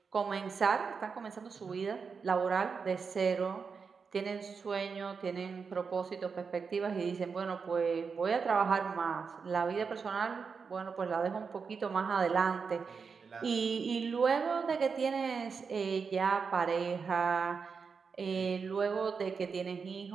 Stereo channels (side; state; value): left; quieter; 5.5 dB